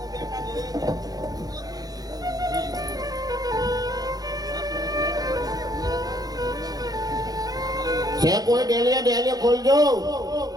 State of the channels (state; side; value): late; left; 0.18 ms